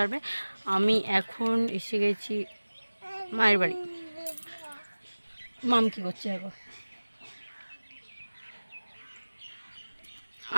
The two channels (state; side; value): inverted; both; correlation -1.00